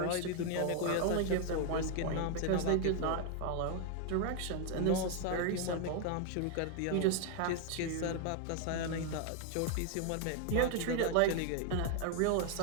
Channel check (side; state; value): both; different; correlation 0.01